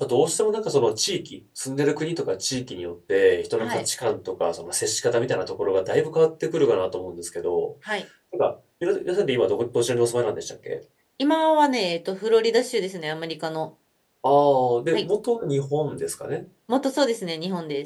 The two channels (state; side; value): identical; both; correlation 1.00